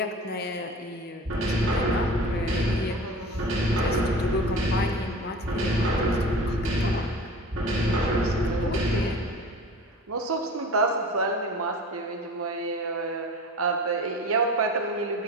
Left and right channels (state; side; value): normal; both; correlation 0.38